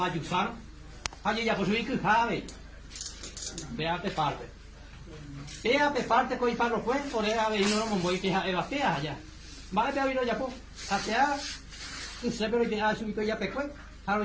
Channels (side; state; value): both; identical; correlation 1.00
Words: haje ya posui que jave vea pe parte pea pe parte coi parro pues por era ve no mo voy que eva pea ya va a ver ya po hacia que se pero que ha subido ya pe pues haro